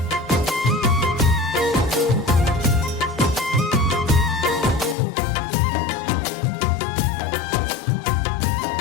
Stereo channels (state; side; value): drops out; right; at 5.0 s